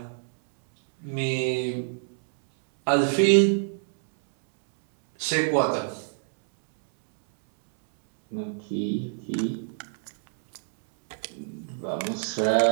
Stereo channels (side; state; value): left; silent; 61 dB below the other